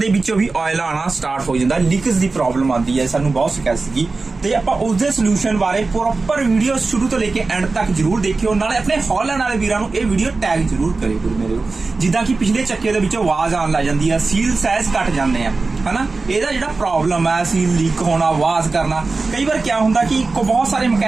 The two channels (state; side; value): quieter; left; 3.8 dB